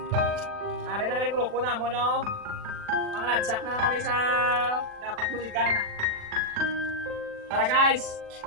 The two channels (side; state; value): left; late; 40 ms